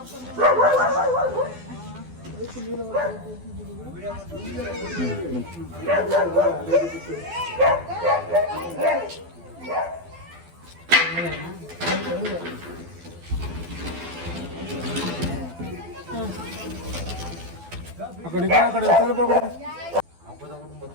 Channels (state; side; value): late; left; 12 ms